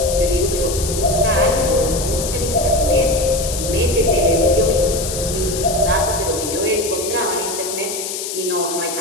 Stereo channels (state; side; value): noise; left; hiss, 6 dB below the sound